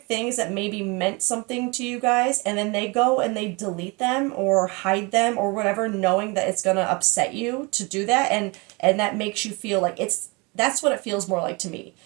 things that maybe meant something to you guys, and then they go and they delete them or hide them or whatever, knowing that it's gonna upset you to do that, and that makes you feel like that's what it feels more like to me.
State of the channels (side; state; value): left; quieter; 28.1 dB